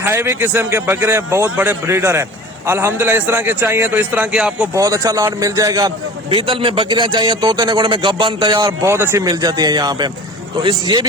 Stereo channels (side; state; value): both; normal; correlation 0.39